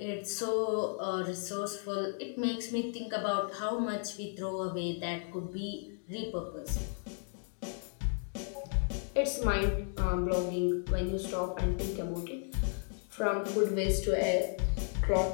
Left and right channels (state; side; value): silent; right; 55 dB below the other